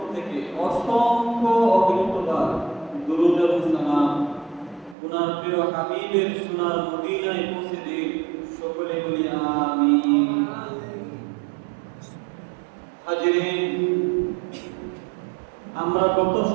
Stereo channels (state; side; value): drops out; left; at 5.0 s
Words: থেকে অসংখ্য অগণিতবার দুরূদ এবং সালাম ওনার প্রিয় হাবিবের সোনার মদিনায় পৌঁছে দিন। সকলে বলি আমিন। হাজিরিন, আমরা গত